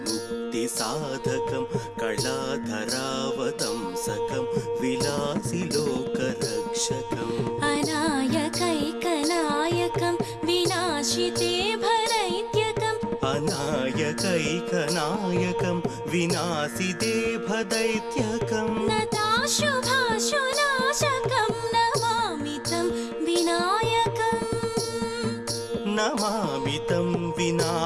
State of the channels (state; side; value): identical; both; correlation 1.00